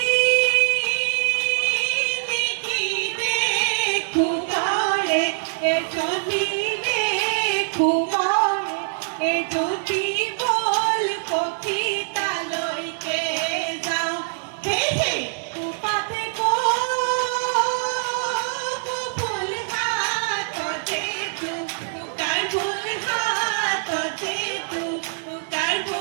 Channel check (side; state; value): left; silent; digital silence